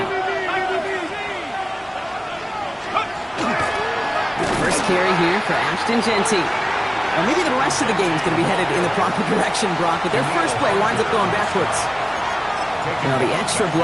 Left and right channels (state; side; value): identical; both; correlation 1.00